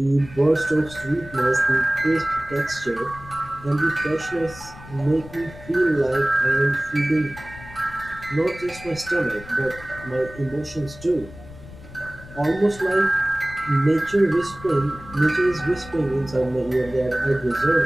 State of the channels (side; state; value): left; noise; rumble, 17 dB below the sound